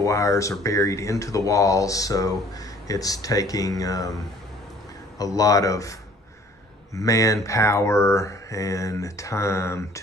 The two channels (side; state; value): both; normal; correlation 0.55